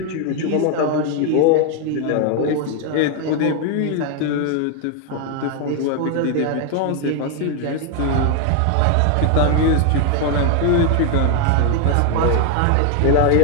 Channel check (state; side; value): different; both; correlation 0.01